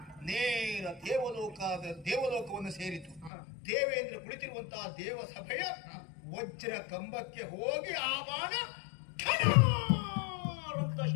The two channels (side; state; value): right; drops out; at 3.3 s